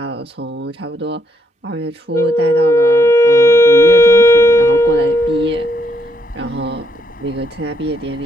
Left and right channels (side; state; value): both; normal; correlation 0.75